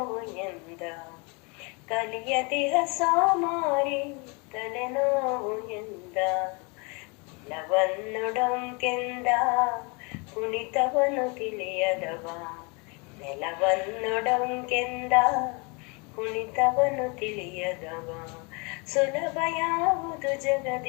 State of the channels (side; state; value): right; quieter; 31.3 dB